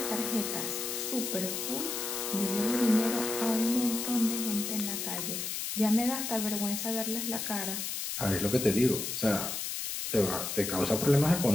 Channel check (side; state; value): left; noise; hiss, 3 dB below the sound